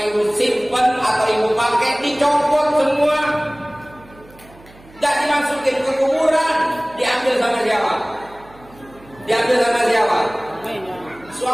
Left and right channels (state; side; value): noise; right; hum, 24 dB below the sound